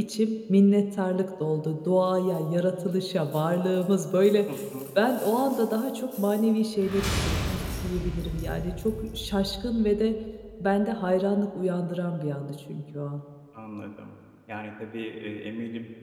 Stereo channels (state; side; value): identical; both; correlation 1.00